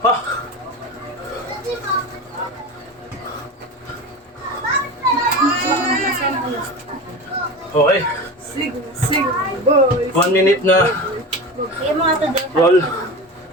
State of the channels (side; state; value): both; normal; correlation 0.28